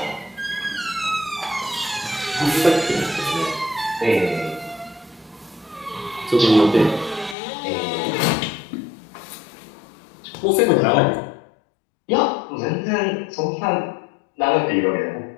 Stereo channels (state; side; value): drops out; right; at 7.4 s